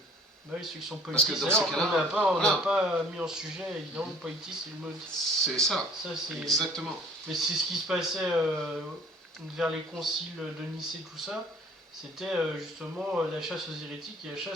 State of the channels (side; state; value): both; normal; correlation 0.52